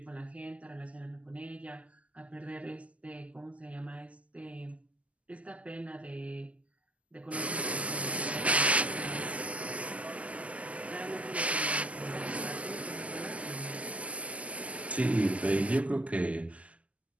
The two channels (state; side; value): late; left; 0.068 ms